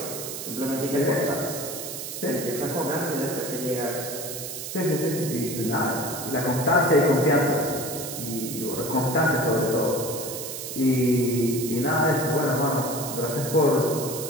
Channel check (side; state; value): right; noise; hiss, 7 dB below the sound